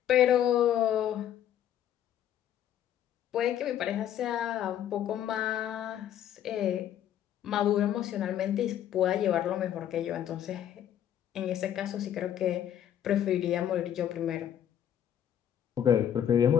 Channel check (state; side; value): quieter; right; 10.3 dB